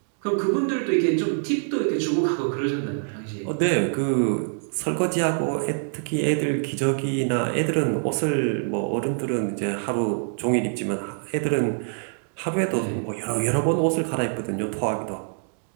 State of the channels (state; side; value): silent; left; digital silence